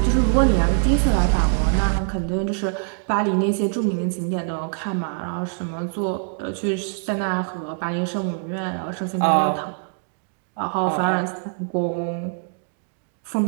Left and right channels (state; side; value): silent; left; digital silence